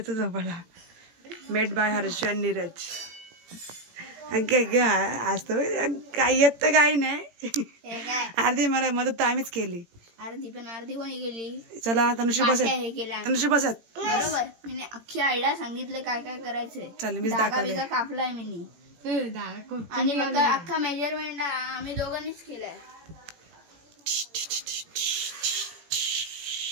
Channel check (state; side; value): late; left; 18 ms